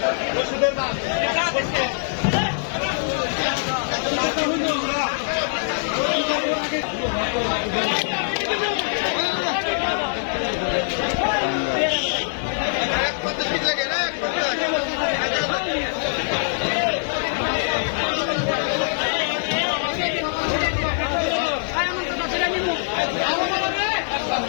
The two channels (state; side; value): silent; right; 63 dB below the other